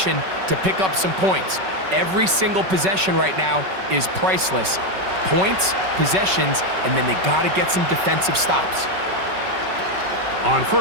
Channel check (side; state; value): left; late; 5.3 ms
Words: to pick up some points. Every single possession right now is priceless. Points, possessions, and then they got to get some defensive stops. On